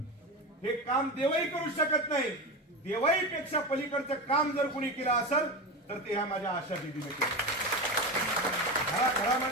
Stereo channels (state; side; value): normal; both; correlation 0.21